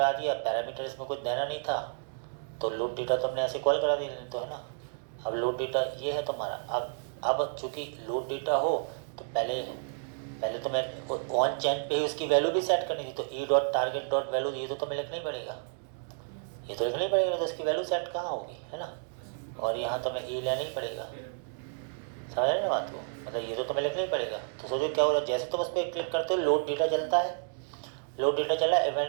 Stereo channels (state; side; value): silent; left; digital silence